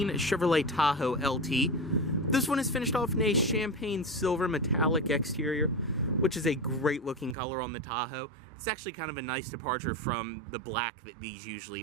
Chevrolet Tahoe LT. This one is finished off in a champagne silver metallic exterior, which is a great looking color on the Tahoe. It's actually kind of a nice departure from the black that these usually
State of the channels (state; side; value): drops out; left; at 7.4 s